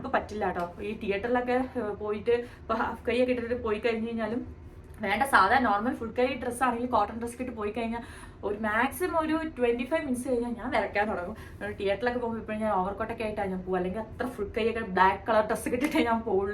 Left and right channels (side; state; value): both; identical; correlation 1.00